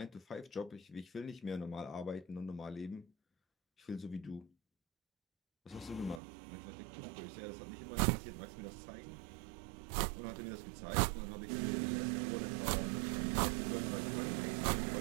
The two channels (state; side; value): drops out; left; at 6.2 s